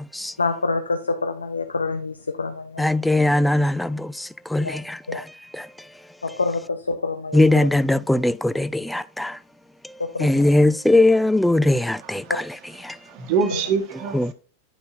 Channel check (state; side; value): normal; both; correlation 0.71